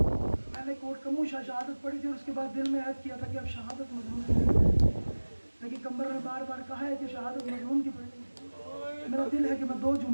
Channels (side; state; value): both; inverted; correlation -1.00